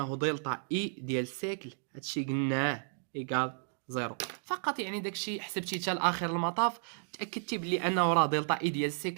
دلتا اي ديال السيكل هادشي قلناه ايكال زيرو فقط. يعني داكشي حسبتي حتى لاخر المطاف، تاكدتي بلي انه راه دلتا اي ديال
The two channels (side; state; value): left; silent; digital silence